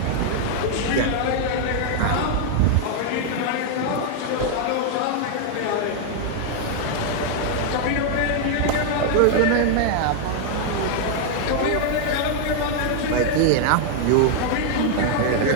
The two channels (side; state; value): both; different; correlation 0.00